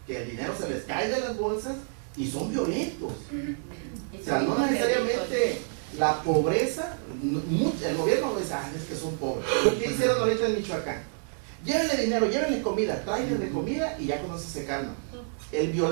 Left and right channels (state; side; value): silent; left; 59 dB below the other